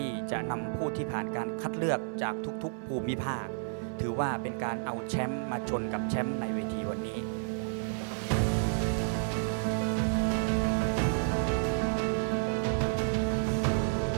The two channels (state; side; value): silent; left; 57 dB below the other